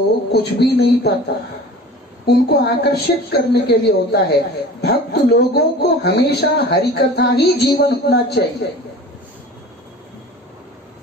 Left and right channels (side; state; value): both; normal; correlation 0.40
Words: कुछ भी नहीं पता, उनको आकर्षित करने के लिए होता है। भक्त लोगों को हमेशा हरि कथा ही जीवन होना चाहिए,